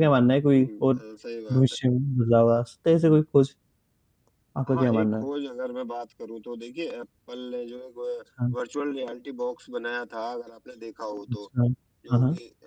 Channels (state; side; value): identical; both; correlation 1.00